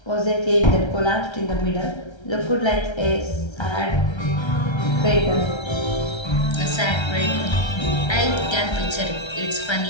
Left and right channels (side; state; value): right; late; 1.3 ms